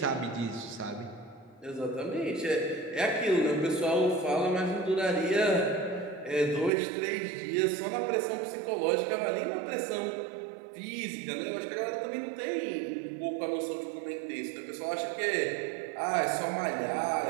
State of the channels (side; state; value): left; drops out; at 6.7 s